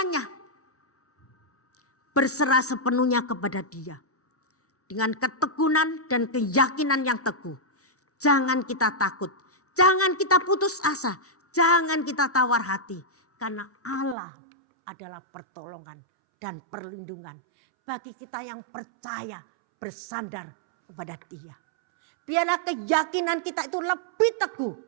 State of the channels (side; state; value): left; drops out; at 14.2 s